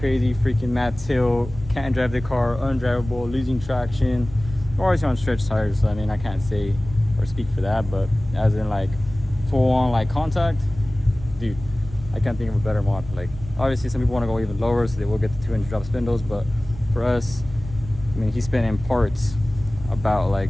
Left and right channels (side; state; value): right; noise; rumble, 14 dB below the sound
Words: freaking mad tilt, can't drive the car, undrivable, losing traction. We're always on stretch tires, so I mean, I can't say or speak for that, but as in like full on like contact, dude, I can't think of a better mod. Like obviously some people want to go even lower, so they will get the 200 drop spindles, but for us, I mean, he's spending parts about like